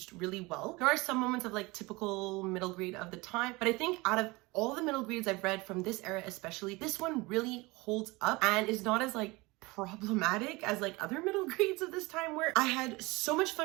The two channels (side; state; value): left; quieter; 23.4 dB